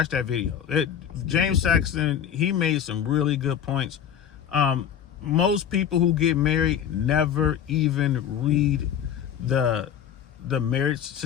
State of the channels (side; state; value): right; quieter; 8.9 dB